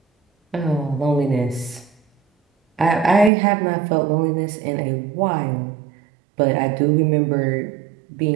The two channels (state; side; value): drops out; left; at 3.3 s